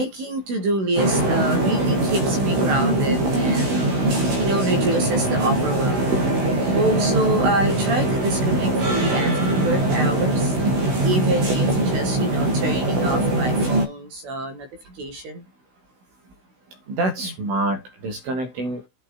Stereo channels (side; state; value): left; late; 16 ms